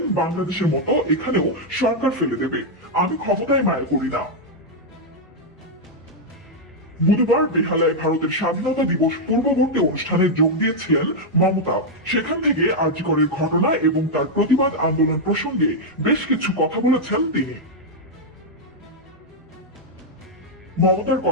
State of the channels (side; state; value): both; normal; correlation -0.02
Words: বাংলাদেশের মতো এখানেও সরকার ফেলে দেবে, আমি ক্ষমতায় মায়া করি না। বুধবার বেহালায় ভারতের স্বাধীনতা দিবস পূর্ববর্তী অনুষ্ঠানে যোগ দিয়েছিলেন মমতা। সেখান থেকে আরজি করের ঘটনা এবং তার প্রতিবাদ আন্দোলন প্রসঙ্গে বেশ কিছু কথা বলেছেন তিনি। মমতার